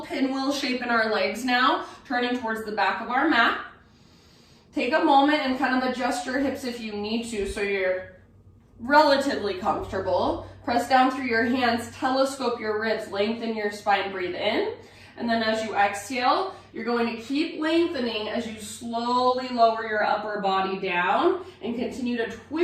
pinwheel shape in our legs now, turning towards the back of our mat. Take a moment and kind of adjust your hips if you need to so you're relatively comfortable. Press down through your hands, telescope your ribs, lengthen your spine, breathe in. And then as you exhale, you're going to keep lengthening as you slowly lower your upper body down and continue to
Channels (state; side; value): identical; both; correlation 1.00